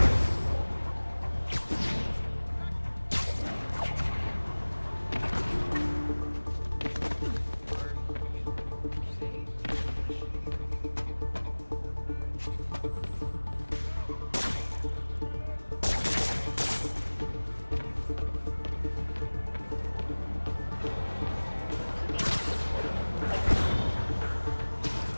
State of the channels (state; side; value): inverted; both; correlation -1.00